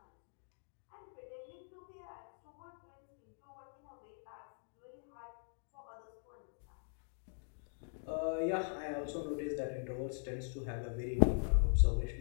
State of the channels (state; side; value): silent; right; digital silence